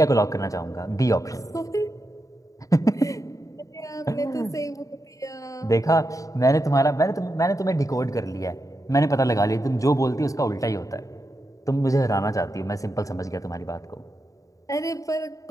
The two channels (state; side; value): late; right; 0.16 ms